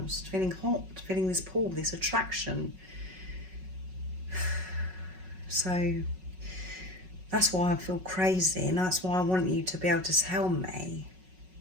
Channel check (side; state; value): left; late; 5.4 ms